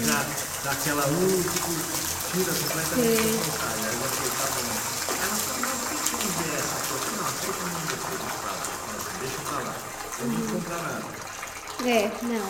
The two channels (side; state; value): both; identical; correlation 1.00